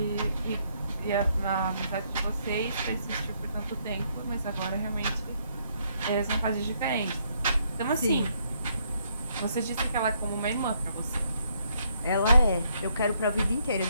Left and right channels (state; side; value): inverted; both; correlation -0.72